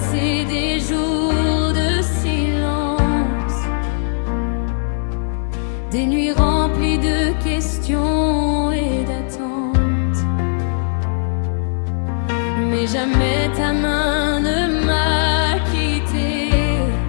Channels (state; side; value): silent; right; 58 dB below the other